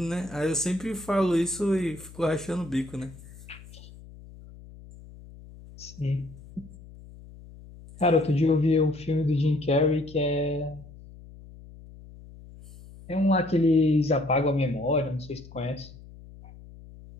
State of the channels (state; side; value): noise; left; hum, 19 dB below the sound